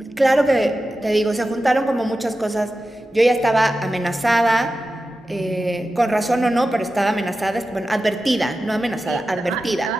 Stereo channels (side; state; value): both; normal; correlation 0.93